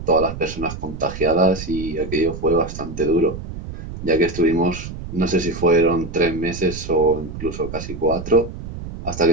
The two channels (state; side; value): noise; right; rumble, 10 dB below the sound